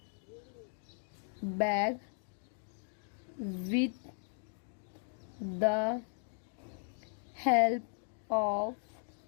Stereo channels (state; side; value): silent; right; 53 dB below the other